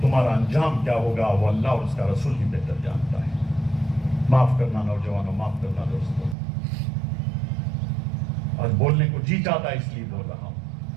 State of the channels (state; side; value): drops out; left; at 6.4 s